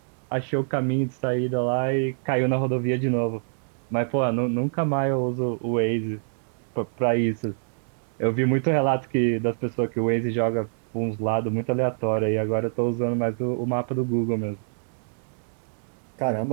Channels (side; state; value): left; silent; digital silence